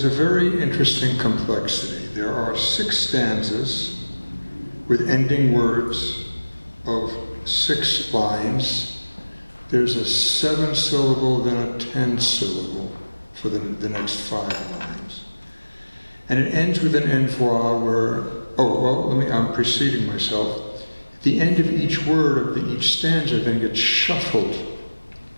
a very interesting complexity. There are 6 stanzas with ending words of 6 lines. There's a 7-syllable, then a 10-syllable for the next 5 lines. And it ends with an envoi where, I'm preceding myself. The end of each word of each stanza then gets shuffled.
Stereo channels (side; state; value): both; inverted; correlation -1.00